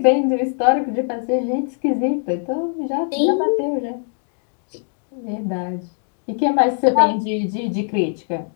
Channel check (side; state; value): right; silent; 57 dB below the other